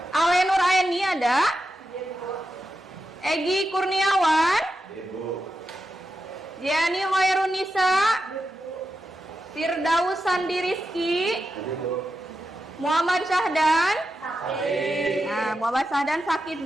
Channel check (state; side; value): normal; both; correlation 0.88